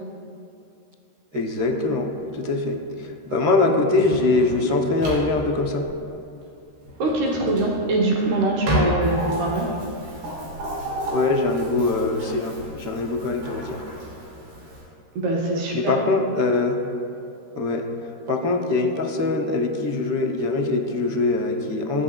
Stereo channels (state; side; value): late; left; 13 ms